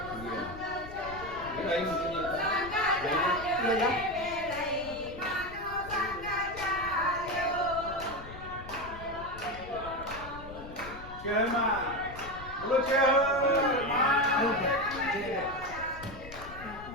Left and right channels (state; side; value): noise; left; rumble, 14 dB below the sound